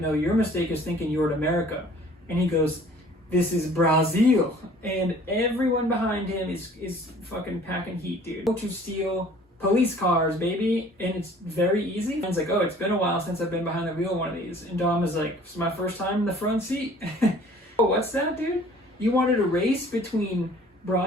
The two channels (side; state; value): both; normal; correlation 0.52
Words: no, your mistake is thinking you're in America. And he goes, this is Brazil. And everyone behind him is fucking packing heat, dude. Go to steal police cars, baby, and it's very easy. And it's like, oh, it's been a while since I've been behind the wheel of one of these. And Dom is like, it's my first time in the front seat. Oh, what's that, dude? You wanted a race between